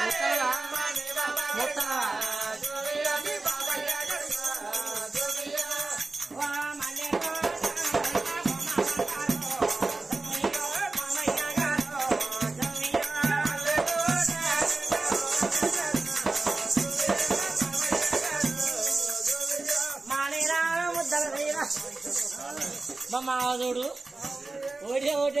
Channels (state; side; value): quieter; left; 3.4 dB